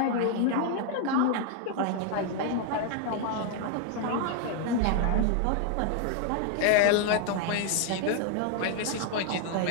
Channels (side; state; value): both; different; correlation 0.00